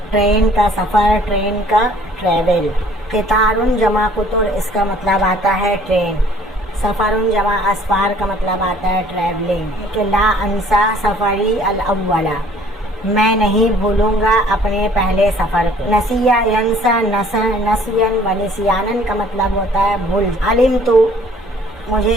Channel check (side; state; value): both; normal; correlation 0.56